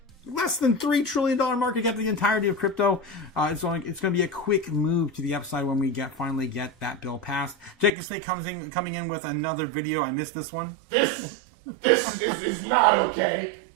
less than $3 trillion market cap, the entirety of crypto. It's going to be a quick move to the upside when we finally get that bill passed. Jacob Stay coming in with another video. I missed this one. This is not okay.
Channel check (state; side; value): drops out; left; at 7.9 s